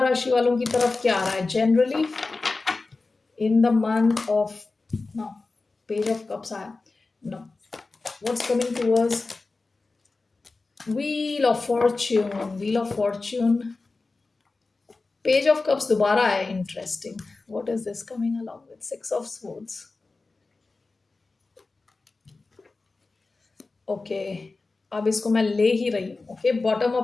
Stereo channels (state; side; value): quieter; right; 3.7 dB